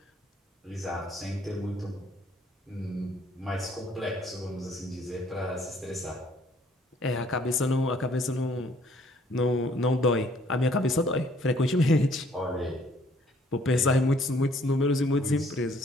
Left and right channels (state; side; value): normal; both; correlation 0.62